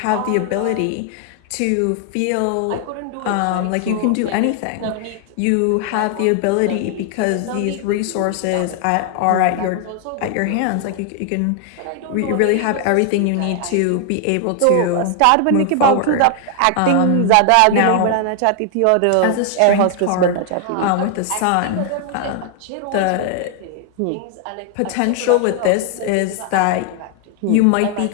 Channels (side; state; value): both; different; correlation 0.00